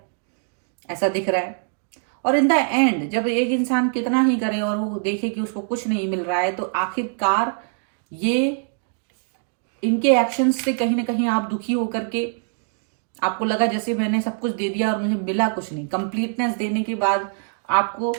ऐसा दिख रहा है। और इन द एंड जब एक इंसान कितना ही करे और वो देखे कि उसको कुछ नहीं मिल रहा है, तो आखिरकार ये इनके एक्शंस से कहीं ना कहीं आप दुखी होकर के आपको लगा जैसे मैंने सब कुछ दे दिया और मुझे मिला कुछ नहीं। कंप्लीटनेस देने के बाद आपको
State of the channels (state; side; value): silent; left; 63 dB below the other